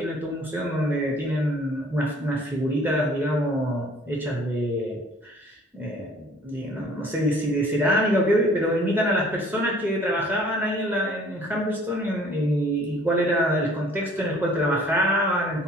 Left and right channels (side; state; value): both; normal; correlation 0.54